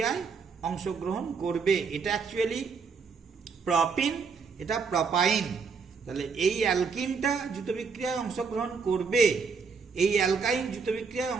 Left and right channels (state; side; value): quieter; left; 5.3 dB